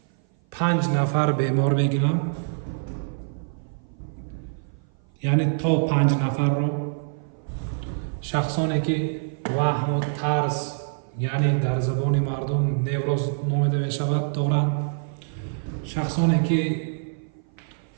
5 нафар бемор мегирам, яъне то 5 нафарро. шахсоне ки ваҳму тарс, яъне дар забони мардум невроз номида мешавад, доранд. шахсоне ки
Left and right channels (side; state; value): left; silent; 56 dB below the other